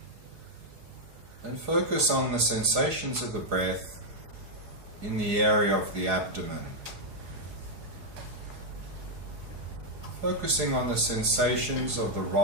and focus on the sensations of the breath in the area of the abdomen. Focusing on the sensations of the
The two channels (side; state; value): left; late; 4.8 ms